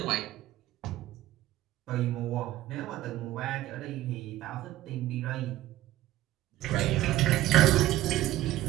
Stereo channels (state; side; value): quieter; left; 15.2 dB